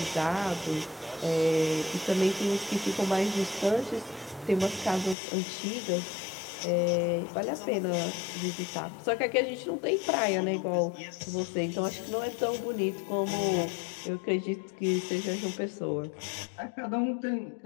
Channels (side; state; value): right; drops out; at 5.2 s